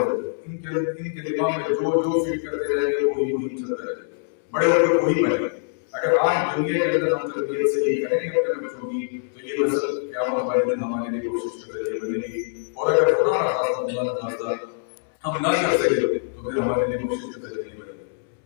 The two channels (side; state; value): right; silent; digital silence